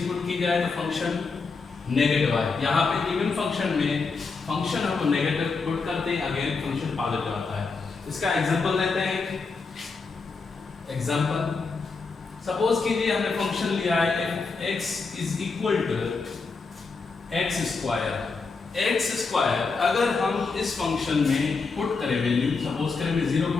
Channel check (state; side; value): quieter; right; 4.5 dB